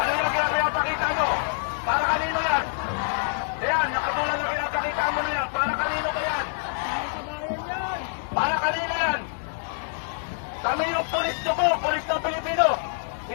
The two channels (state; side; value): silent; right; digital silence